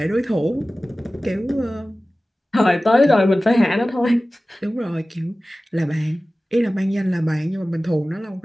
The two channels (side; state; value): both; normal; correlation 0.97